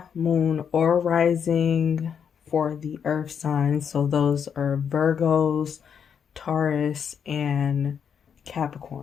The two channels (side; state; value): right; quieter; 7.5 dB